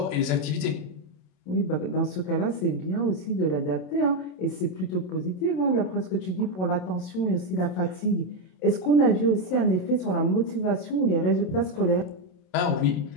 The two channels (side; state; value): right; late; 27 ms